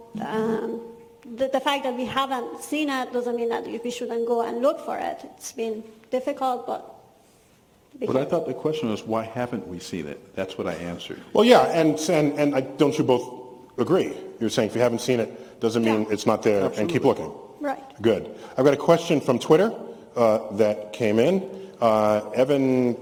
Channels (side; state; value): both; identical; correlation 1.00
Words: the fact that we haven't seen it doesn't mean that we shouldn't go and look for it. It's been difficult, but... But I thought the question was, why haven't we seen it? That's what I answered. Well, yeah, and don't you both agree? You're saying if you haven't seen it, doesn't mean it's not there, and keep looking. Right. Good. I've got a question from Twitter that came in. Evan